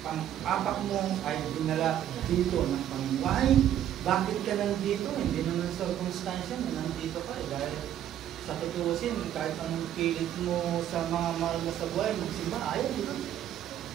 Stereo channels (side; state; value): left; quieter; 11.1 dB